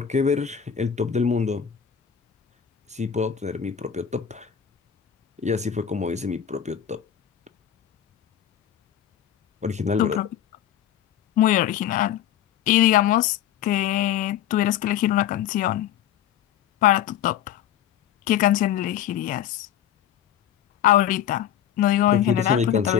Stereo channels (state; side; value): quieter; right; 10.0 dB